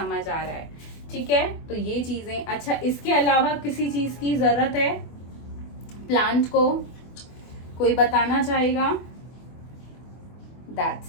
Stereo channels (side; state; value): right; late; 24 ms